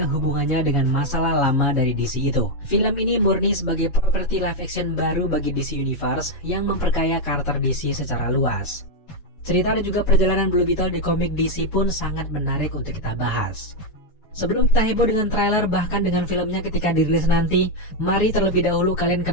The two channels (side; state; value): right; late; 7.1 ms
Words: hubungannya dengan masalah lama dari DC itu. Film ini murni sebagai properti live action baru bagi DC Universe yang memperkaya karakter DC secara luas. Cerita dan juga perjalanan Blue Beetle di komik DC pun sangat menarik untuk kita bahas. Sebelum kita heboh dengan trailer bahkan dengan filmnya ketika dirilis nanti, mari terlebih dahulu kalian